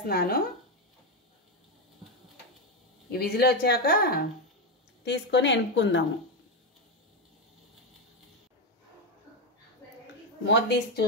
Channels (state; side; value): normal; both; correlation 0.08